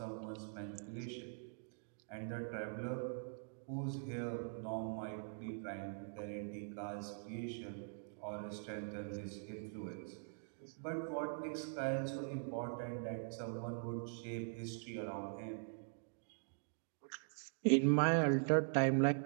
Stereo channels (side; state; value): left; silent; digital silence